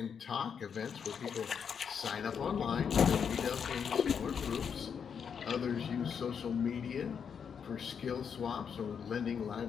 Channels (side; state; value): right; quieter; 7.0 dB